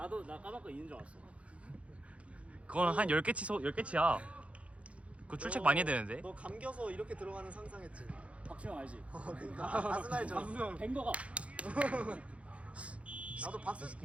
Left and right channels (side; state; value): left; late; 0.063 ms